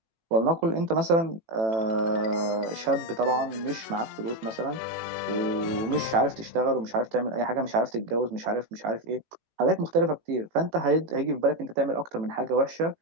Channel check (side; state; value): left; late; 18 ms